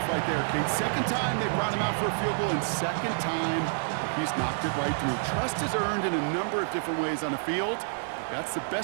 right there, Kate. 2nd time they brought him out for a field goal, and 2nd time he's knocked it right through. Trust is earned in a number of different ways on the field. But that's the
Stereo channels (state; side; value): silent; left; digital silence